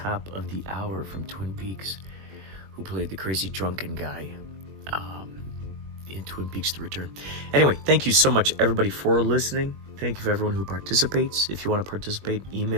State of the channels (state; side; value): late; left; 21 ms